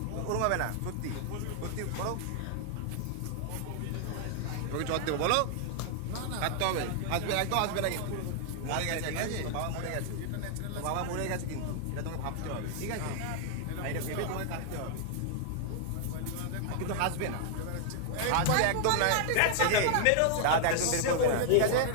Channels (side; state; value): both; different; correlation 0.00